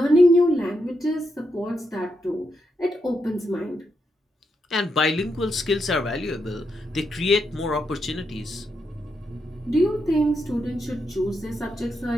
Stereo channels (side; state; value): both; normal; correlation 0.83